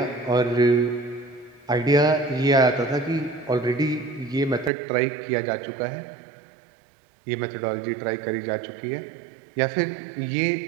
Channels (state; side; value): drops out; left; at 4.7 s